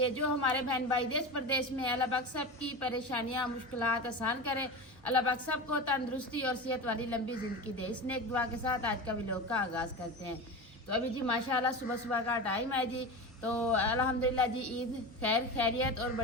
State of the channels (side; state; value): both; normal; correlation 0.26